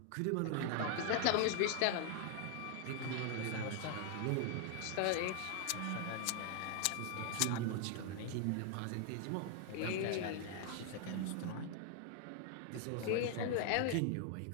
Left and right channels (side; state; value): both; different; correlation 0.00